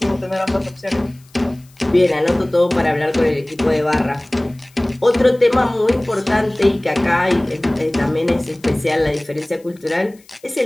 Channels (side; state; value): left; noise; hiss, 29 dB below the sound